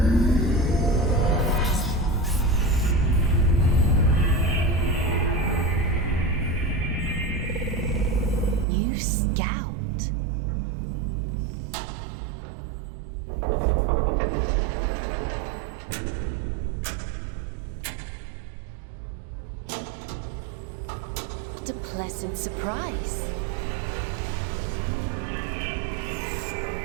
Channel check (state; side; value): drops out; left; at 8.7 s